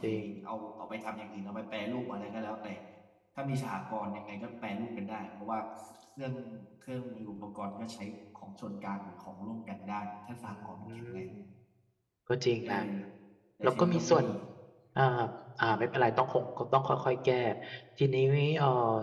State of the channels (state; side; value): identical; both; correlation 1.00